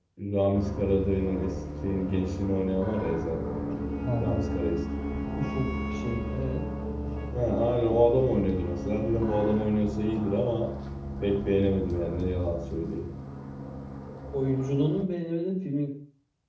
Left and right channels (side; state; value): both; identical; correlation 1.00